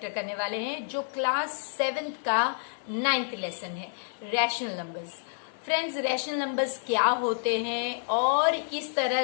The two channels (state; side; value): silent; right; digital silence